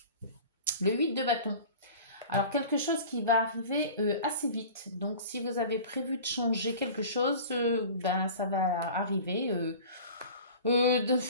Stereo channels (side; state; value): both; inverted; correlation -0.40